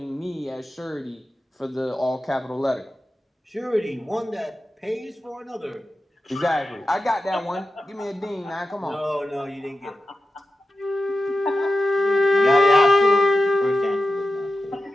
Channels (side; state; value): both; normal; correlation 0.92